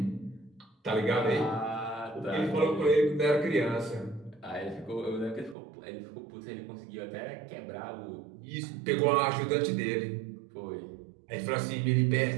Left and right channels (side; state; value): left; drops out; at 5.6 s